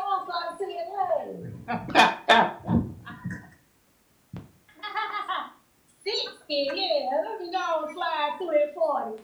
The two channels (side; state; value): both; identical; correlation 1.00